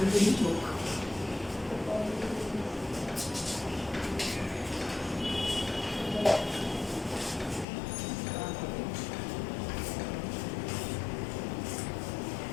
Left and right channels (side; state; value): right; drops out; at 7.7 s